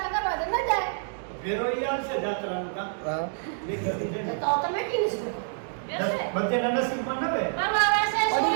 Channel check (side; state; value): left; silent; digital silence